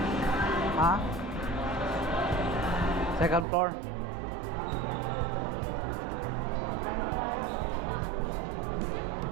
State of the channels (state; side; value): drops out; left; at 3.5 s